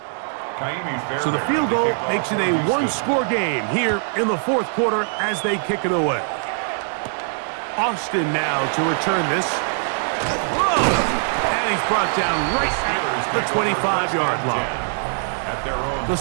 So the field goal makes it a one-score game here in the fourth quarter as they kick it away. Austin now to return this. Whoa! And he's brought down right at the 25-yard line. The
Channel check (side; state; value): left; silent; 57 dB below the other